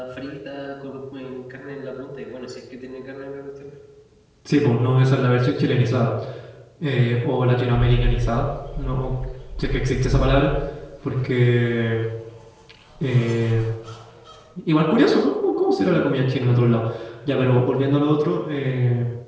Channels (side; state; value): both; identical; correlation 1.00